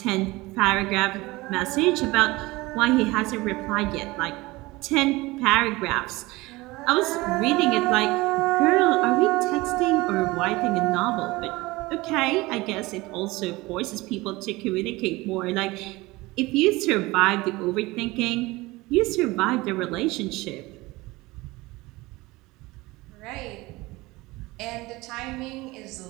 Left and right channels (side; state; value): left; quieter; 21.2 dB